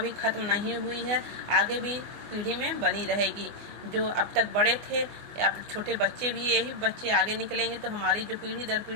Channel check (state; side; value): late; left; 24 ms